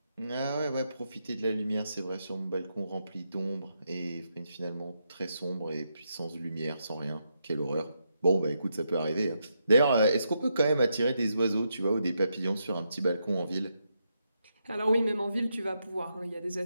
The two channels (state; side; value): inverted; both; correlation -0.82